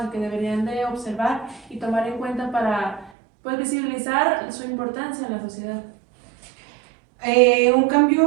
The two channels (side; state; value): left; drops out; at 3.1 s